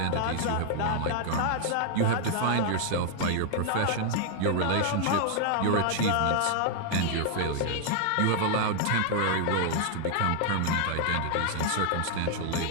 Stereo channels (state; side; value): different; both; correlation 0.00